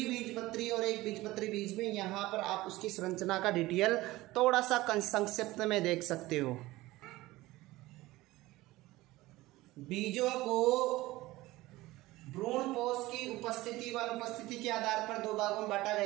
और एक बीजपत्री बीज में यहाँ पर आप उसकी संरचना का डिटेल थोड़ा सा संक्षिप्त में देख सकते हो। बीजों को भ्रूणपोष की उपस्थिति व अनुपस्थिति के आधार पर दो भागों में बांटा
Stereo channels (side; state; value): left; quieter; 18.6 dB